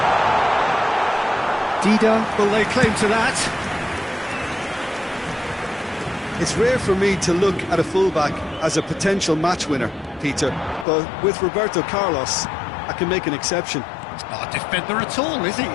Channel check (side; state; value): right; drops out; at 10.9 s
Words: Dida, will they claim to that? It's rare for me to look at a fullback as a potential match winner, Peter, but with Roberto Carlos, I can make an exception. He's not a defender at all, is he?